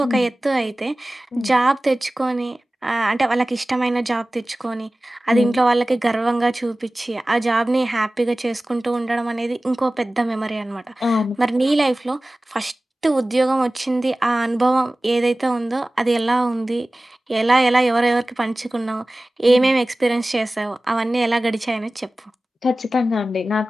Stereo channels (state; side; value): normal; both; correlation 0.97